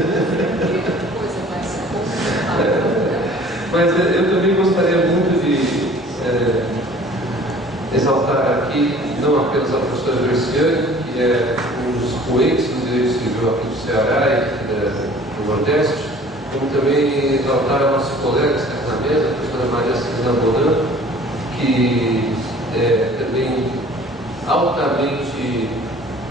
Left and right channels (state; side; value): normal; both; correlation 0.49